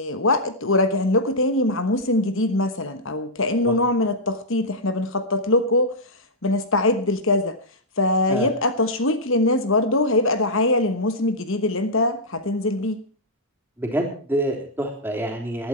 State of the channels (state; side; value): normal; both; correlation -0.08